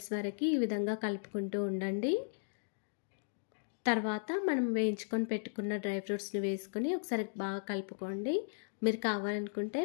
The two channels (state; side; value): silent; right; digital silence